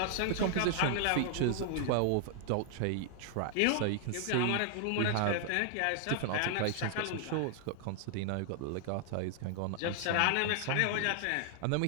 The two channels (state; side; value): different; both; correlation 0.00